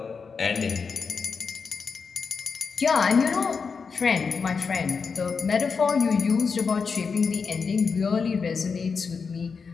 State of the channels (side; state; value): right; quieter; 5.4 dB